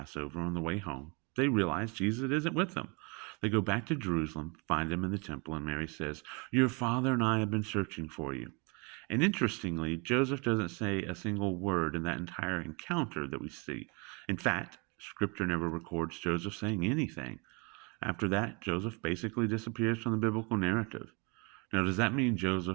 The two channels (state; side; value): quieter; left; 31.2 dB